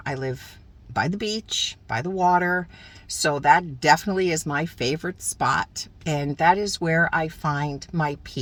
I live by the beach, by the water. So that definitely is my favorite spot. And that is where I find my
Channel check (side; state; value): both; identical; correlation 1.00